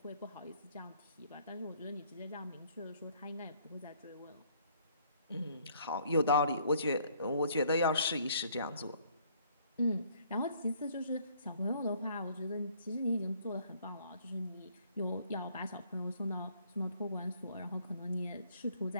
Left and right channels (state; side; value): inverted; both; correlation -0.62